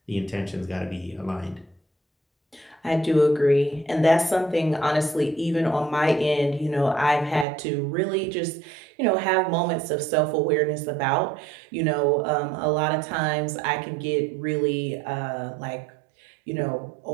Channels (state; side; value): drops out; left; at 7.5 s